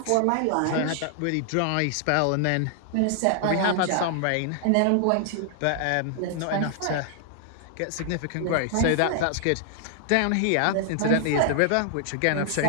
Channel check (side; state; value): both; different; correlation 0.00